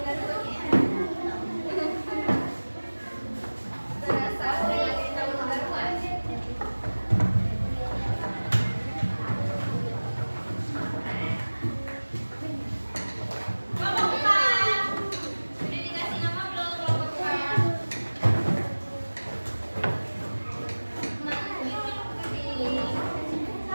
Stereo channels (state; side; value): inverted; both; correlation -1.00